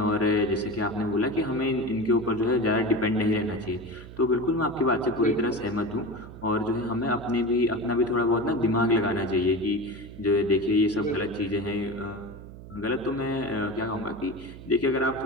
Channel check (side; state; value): right; noise; hum, 15 dB below the sound